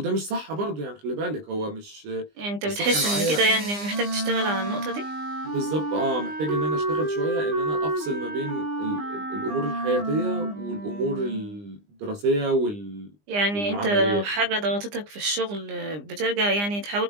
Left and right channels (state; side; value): late; left; 20 ms